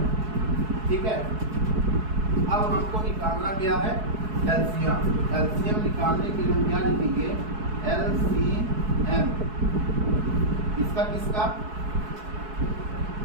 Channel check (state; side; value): late; left; 4.7 ms